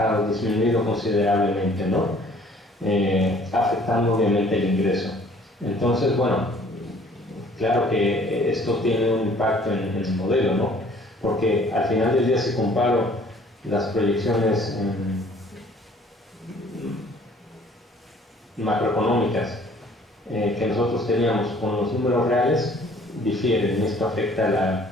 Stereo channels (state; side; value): normal; both; correlation 0.56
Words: disminuido considerablemente, ¿no? Afectando obviamente el ingreso. Entonces, bueno, claro que esto tiene un impacto en el modelo, ¿no? Porque al final del día, si comparo las proyecciones macroeconómicas que nosotros teníamos con los números reales, difieren, y esto afecta a